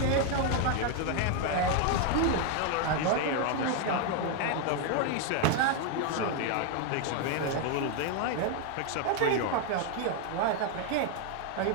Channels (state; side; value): different; both; correlation 0.01